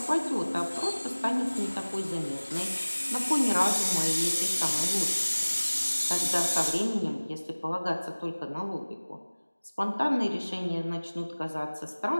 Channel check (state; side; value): inverted; both; correlation -1.00